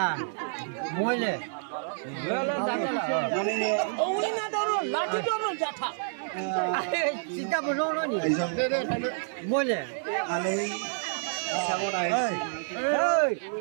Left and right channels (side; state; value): left; silent; digital silence